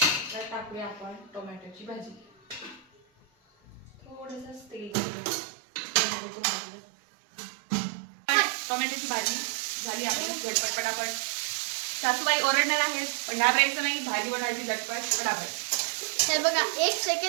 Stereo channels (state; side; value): drops out; left; at 5.0 s